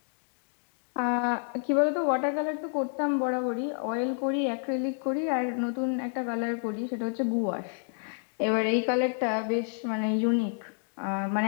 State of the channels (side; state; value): right; silent; 58 dB below the other